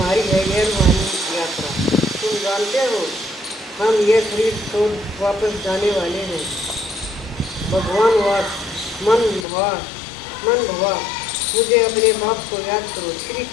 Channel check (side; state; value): right; drops out; at 9.5 s